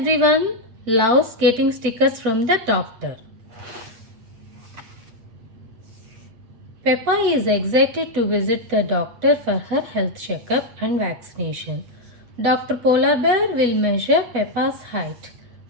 loves getting stickers from the doctor. Peppa is excited to visit the doctor for her health checkup and vaccination. Dr. Polar Bear will measure Peppa's height,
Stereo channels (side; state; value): left; late; 8.8 ms